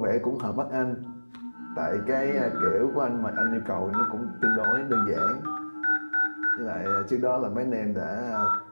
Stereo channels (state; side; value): inverted; both; correlation -1.00